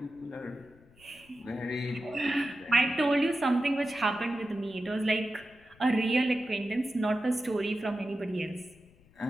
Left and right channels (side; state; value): left; noise; rumble, 28 dB below the sound